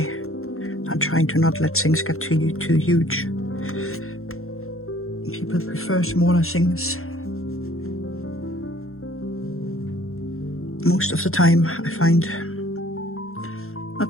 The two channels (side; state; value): right; late; 0.62 ms